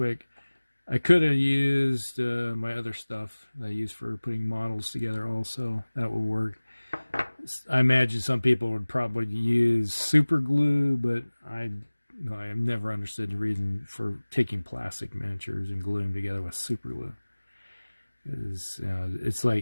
I could have used my other stuff that I use for putting models together also. That would work. I imagine some people would probably use super glue, but I have never understood the reason for taking plastic miniatures and gluing them together with super glue. It's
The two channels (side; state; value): both; inverted; correlation -1.00